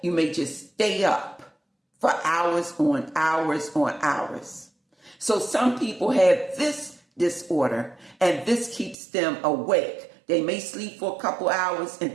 You may just stay up for hours on hours on hours. So some people have this disorder, and this keeps them awake. They may sleep for a couple hours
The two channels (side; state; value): left; drops out; at 9.0 s